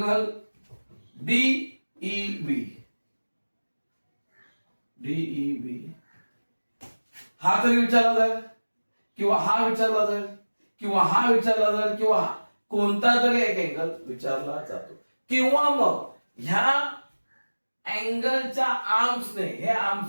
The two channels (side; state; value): both; inverted; correlation -1.00